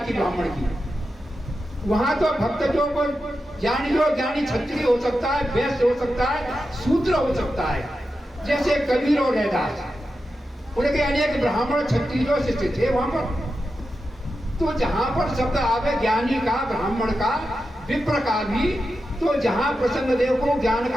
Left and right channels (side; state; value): both; normal; correlation 0.90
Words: ब्राह्मण की। वहां तो भक्तों को ज्ञानी जो ज्ञानी क्षत्रिय हो सकता है, वैश्य हो सकता है, शूद्र हो सकता है। जैसे कबीर और रैदास, उनके अनेक ब्राह्मण क्षत्रिय शिष्य थे वहां पर। तो जहां पर शब्द आवे ज्ञानी का, ब्राह्मण का, विप्र का भी, तो जहां प्रसंग देखो ज्ञान